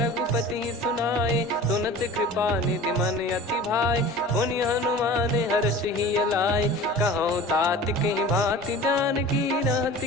सुनाए। सुनत कृपा निधि मन अति भाई, पुनि हनुमान हर्ष ही अलाय। कहो तात कहीं भांति जान की, रहति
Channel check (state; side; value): normal; both; correlation 0.39